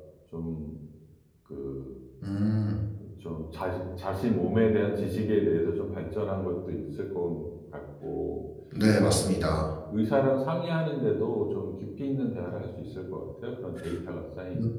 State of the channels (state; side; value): identical; both; correlation 1.00